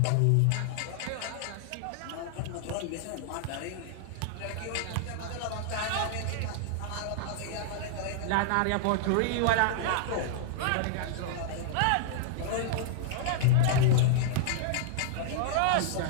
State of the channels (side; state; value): both; different; correlation -0.01